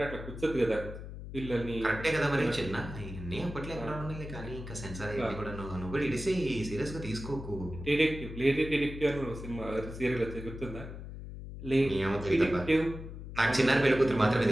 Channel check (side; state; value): left; noise; hum, 10 dB below the sound